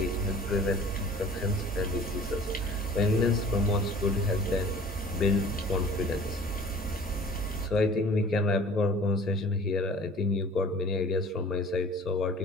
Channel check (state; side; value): normal; both; correlation 0.47